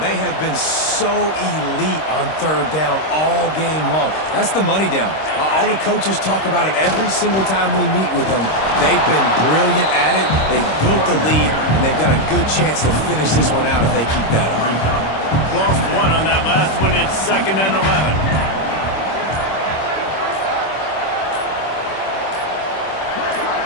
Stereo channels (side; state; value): right; late; 26 ms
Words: have been so elite on third down all game long. That's the money down. All the coaches talk about it every single time we meet with them. They've been brilliant at it. They've built the lead, and they've got a good chance to finish this one out if they keep that up. Lost one on that last one. It's 2nd and 11.